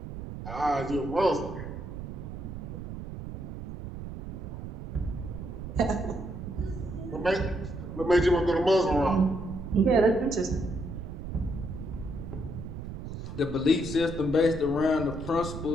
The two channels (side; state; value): right; noise; rumble, 8 dB below the sound